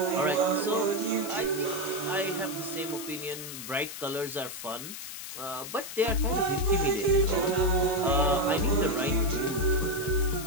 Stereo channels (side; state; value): left; noise; hiss, 9 dB below the sound